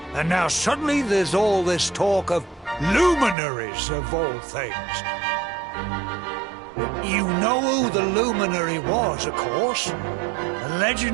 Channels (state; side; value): drops out; left; at 3.4 s